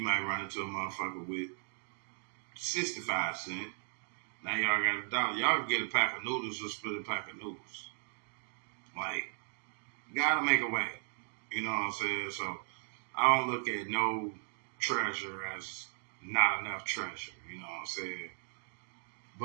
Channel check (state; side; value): silent; left; 53 dB below the other